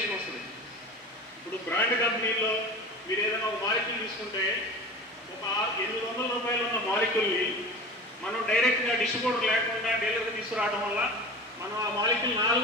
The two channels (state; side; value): normal; both; correlation 0.34